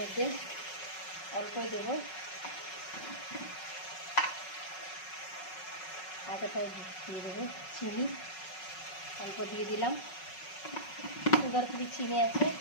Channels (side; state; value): right; late; 5.4 ms